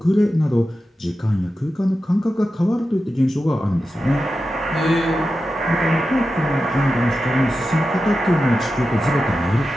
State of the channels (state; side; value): normal; both; correlation 0.91